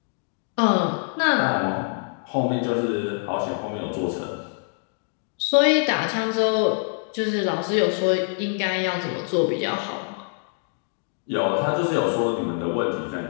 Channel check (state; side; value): silent; right; digital silence